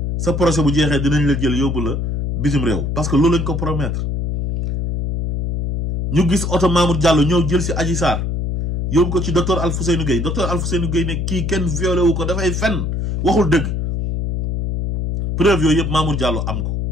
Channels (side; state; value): left; noise; hum, 1 dB below the sound